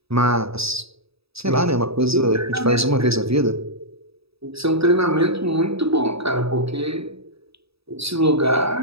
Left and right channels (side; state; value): left; late; 0.77 ms